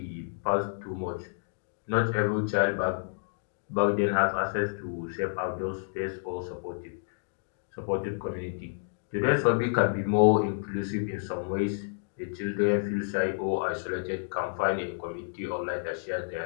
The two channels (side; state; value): right; silent; digital silence